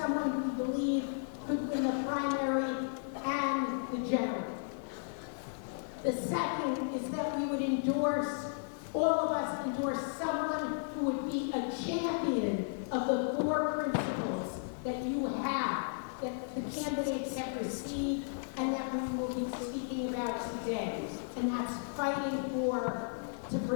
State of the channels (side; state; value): right; silent; digital silence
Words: we believe could win the primary and the general. The second is that we would endorse, all of us endorse someone who would be a champion of the 4 principles that you have, that the candidates have received, and that we will be speaking about today. And that's fighting to